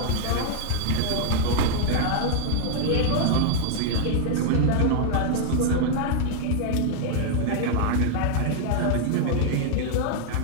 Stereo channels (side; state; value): both; different; correlation -0.01